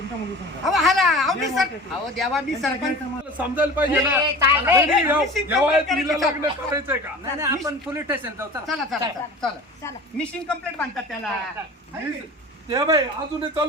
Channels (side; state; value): both; normal; correlation 0.38